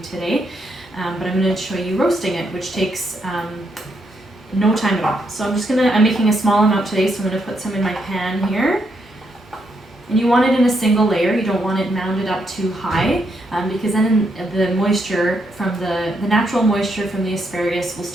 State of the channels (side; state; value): both; normal; correlation 0.78